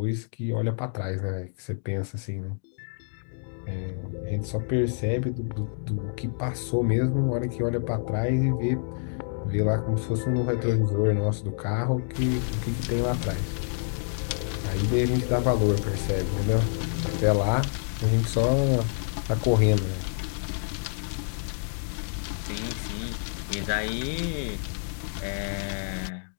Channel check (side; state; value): right; silent; digital silence